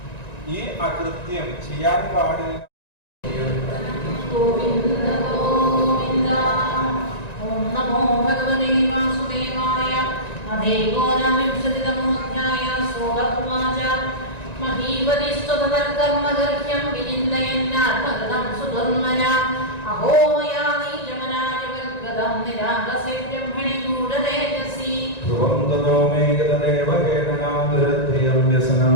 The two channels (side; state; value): right; late; 1.9 ms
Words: ഈ അകൃത്യം ചെയ്യാൻ പാടില്ല. ഗോവിന്ദ ഗോവിന്ദ. ഓം നമോ ഭഗവതേ വാസുദേവായ. അധൈകോനവിംശതിതമോധ്യായ. സോദർവാച മഹീപതിസ്തുതകർമ്മഗർഹ്യം വിചിന്തയന്നാത്മകൃതം സുധർമ്മന. അഹോ മയാ നീചമനാജവർഗദം നിരാകസേ ബ്രഹ്മണി ഗൂഢതേജസി. ധ്രുവം തതോ മേഘതദേവ കേതനാദ്രത്രിയം